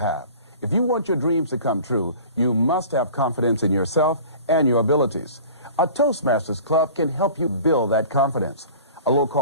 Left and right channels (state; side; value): inverted; both; correlation -0.43